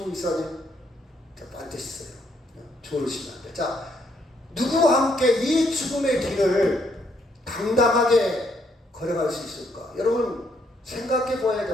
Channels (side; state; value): both; normal; correlation 0.72